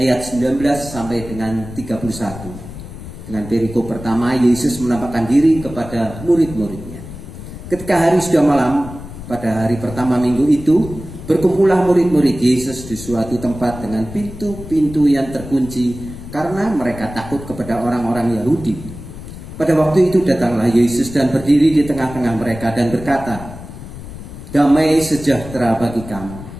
19 sampai dengan 31. Dengan perikop pertama, Yesus menampakkan diri kepada murid-muridnya. Ketika hari sudah malam, pada hari pertama minggu itu, berkumpullah murid-murid Yesus di suatu tempat dengan pintu-pintu yang terkunci karena mereka takut kepada orang-orang Yahudi. Pada waktu itu datanglah Yesus dan berdiri di tengah-tengah mereka dan berkata, "Damai sejahtera bagi kamu."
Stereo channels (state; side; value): noise; left; rumble, 13 dB below the sound